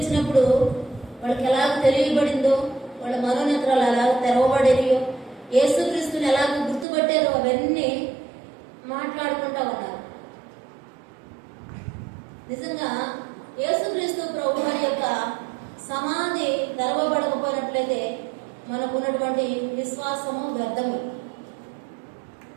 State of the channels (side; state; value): left; drops out; at 6.9 s